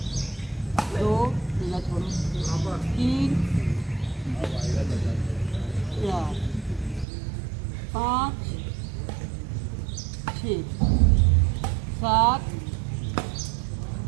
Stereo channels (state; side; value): drops out; left; at 7.1 s